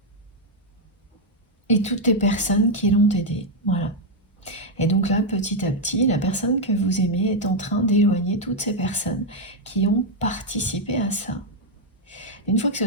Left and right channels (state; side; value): normal; both; correlation 0.00